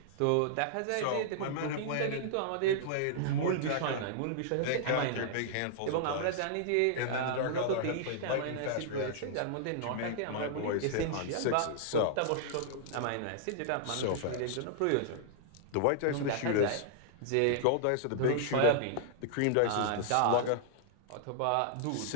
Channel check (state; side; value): different; both; correlation -0.01